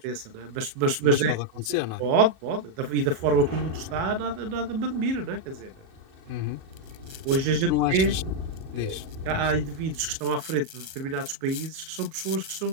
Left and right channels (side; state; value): left; late; 37 ms